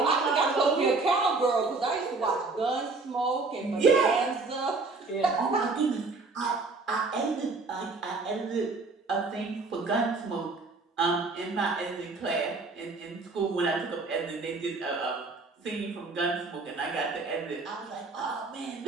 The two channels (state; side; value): quieter; left; 3.8 dB